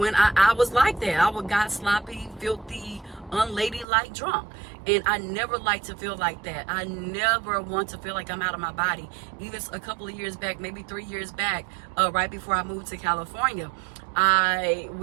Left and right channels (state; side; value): drops out; left; at 3.9 s